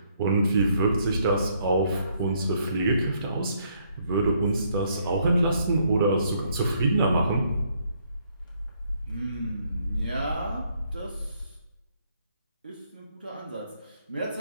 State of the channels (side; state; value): both; inverted; correlation -0.70